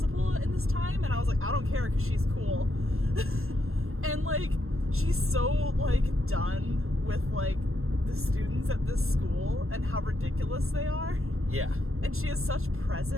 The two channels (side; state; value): left; late; 0.62 ms